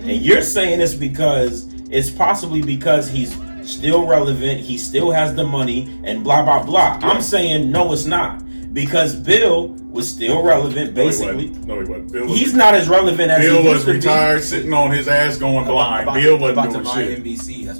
And you're saying it's possibly because he's still relevant, he still has the money, and blah, blah, blah. I'm saying no, it's not. because Bill was still relevant, basically. No, he wasn't. Bill was He's not as relevant as Bill he was used to be. retired, sitting on his ass going blind. Bill wasn't doing buy shit. NBC. That's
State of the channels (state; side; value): inverted; both; correlation -1.00